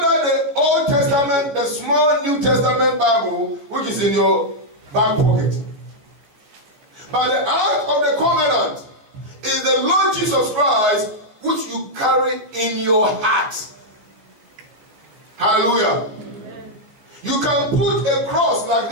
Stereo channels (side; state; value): left; late; 14 ms